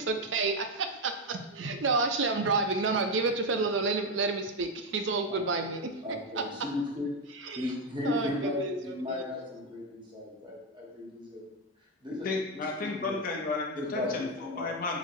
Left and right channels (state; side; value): normal; both; correlation 0.07